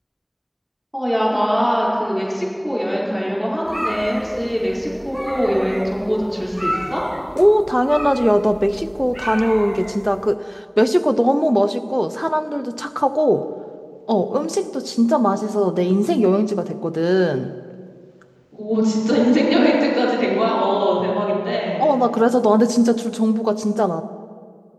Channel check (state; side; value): identical; both; correlation 1.00